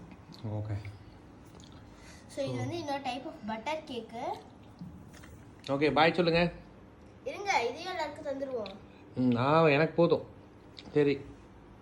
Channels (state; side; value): identical; both; correlation 1.00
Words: ஓகே. ஸோ இது வந்து இன்னொரு type of butter cake. Okay, bye சொல்லுங்க. இருங்க, இதையும் எல்லாருக்கும் தந்துடுவோம். எனக்கு போதும். சரி,